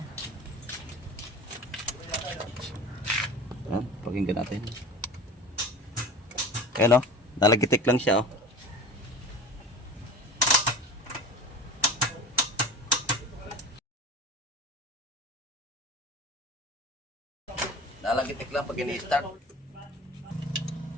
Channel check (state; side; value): normal; both; correlation 0.35